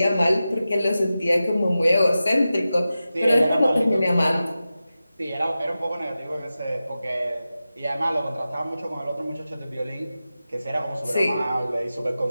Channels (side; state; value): both; inverted; correlation -0.94